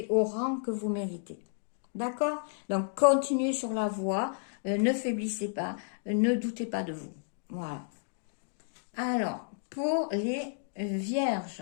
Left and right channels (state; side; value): silent; right; digital silence